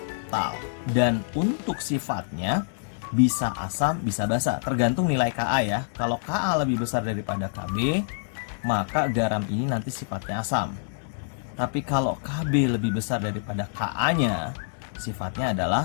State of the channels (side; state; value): right; silent; 61 dB below the other